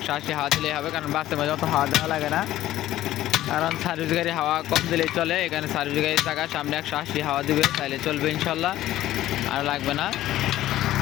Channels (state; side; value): quieter; right; 14.3 dB